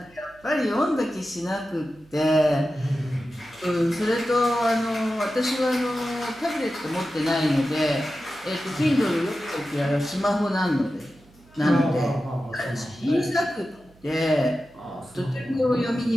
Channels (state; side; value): noise; right; hum, 27 dB below the sound